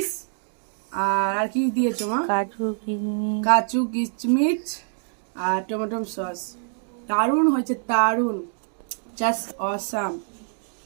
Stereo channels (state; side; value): silent; left; digital silence